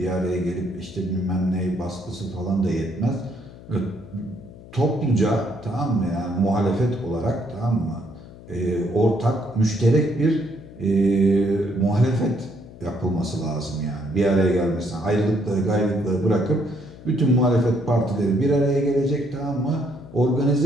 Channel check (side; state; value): left; noise; hum, 18 dB below the sound